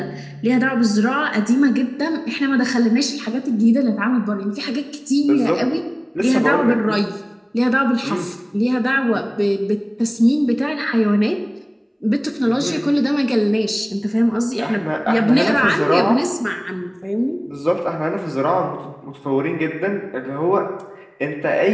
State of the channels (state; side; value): identical; both; correlation 1.00